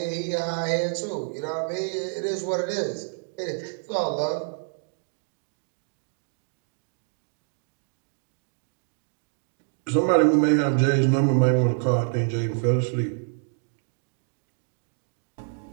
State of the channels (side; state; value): left; silent; digital silence